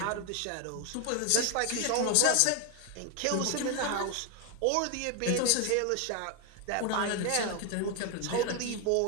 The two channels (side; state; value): both; different; correlation 0.01